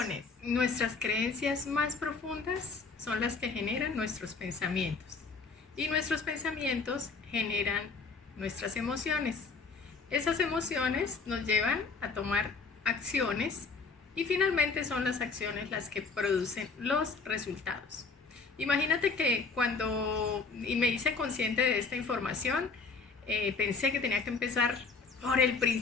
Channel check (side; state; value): right; quieter; 4.5 dB